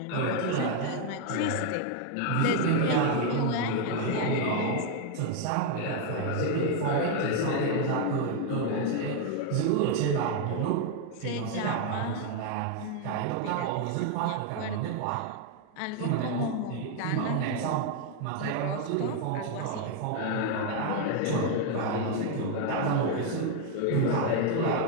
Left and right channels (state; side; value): different; both; correlation 0.01